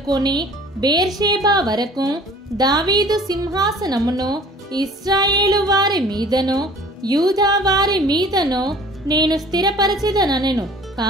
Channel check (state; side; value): normal; both; correlation 0.49